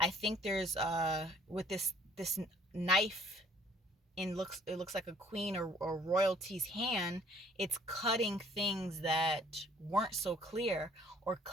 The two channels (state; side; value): normal; both; correlation 0.58